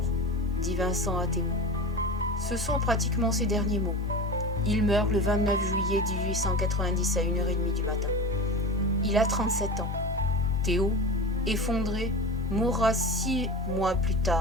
», dit Vincent à Théo. Ce sont pratiquement ses derniers mots. Il meurt le 29 juillet 1890 à 1h30 du matin. Il a 37 ans. Théo, effondré, mourra 6 mois plus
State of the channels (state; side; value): normal; both; correlation 0.30